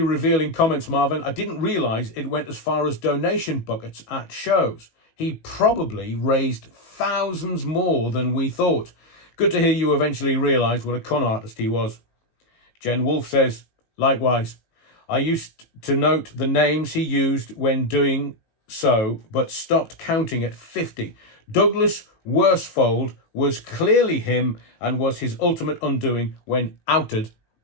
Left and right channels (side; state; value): right; late; 19 ms